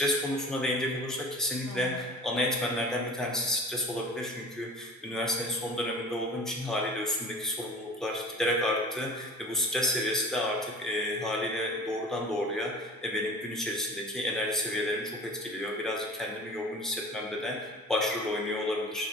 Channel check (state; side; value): normal; both; correlation 0.41